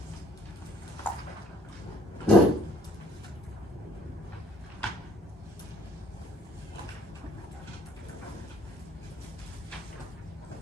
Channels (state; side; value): normal; both; correlation 0.60